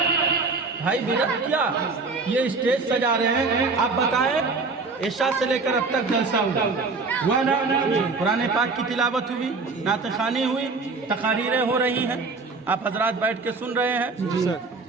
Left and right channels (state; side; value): quieter; left; 4.1 dB